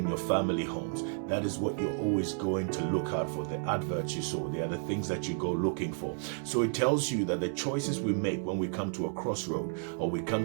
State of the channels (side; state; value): left; silent; 57 dB below the other